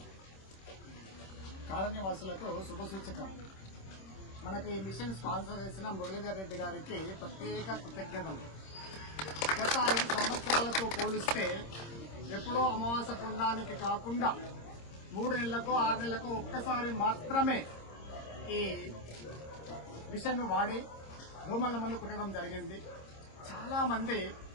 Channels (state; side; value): late; right; 26 ms